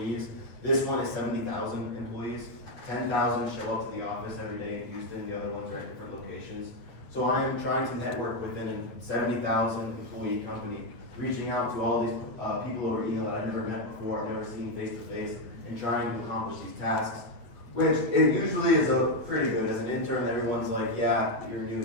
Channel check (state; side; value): late; right; 8.4 ms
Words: This one is 70,000 employees. 10,000 show up to the office every day in Houston. The other ones are at different locations. So I am trying to network within a 70,000 employee company, reaching out to all these people over email that I've never met before, I've never seen face to face, and trying to accomplish these tasks, which it usually is pretty good. As an intern, everyone's like, yeah, you're new